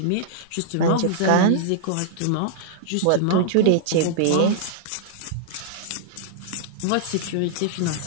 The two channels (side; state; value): both; different; correlation -0.01